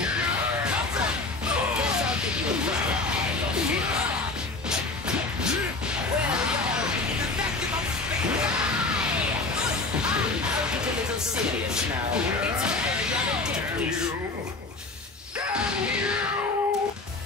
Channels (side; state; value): right; quieter; 3.4 dB